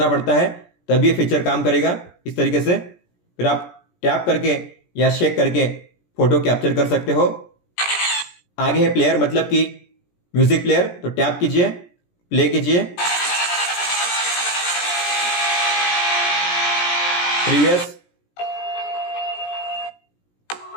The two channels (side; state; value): right; late; 17 ms